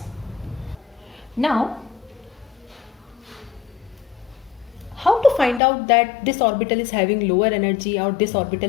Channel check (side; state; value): right; drops out; at 5.6 s